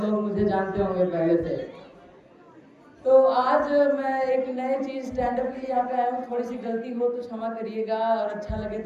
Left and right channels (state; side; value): identical; both; correlation 1.00